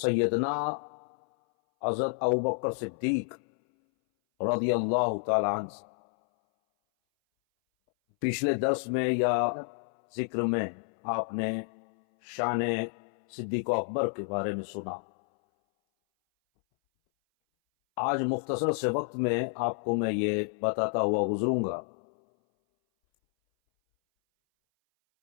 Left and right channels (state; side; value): silent; right; 58 dB below the other